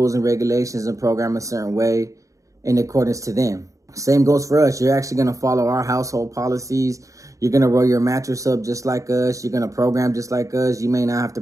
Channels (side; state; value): left; late; 0.16 ms